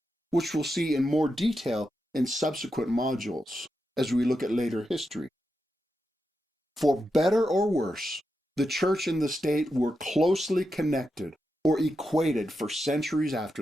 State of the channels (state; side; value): normal; both; correlation 0.87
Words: which we'll see in more detail in subsequent modules as we look at later history. For better or worse, the church and the state were closely connected or equated for centuries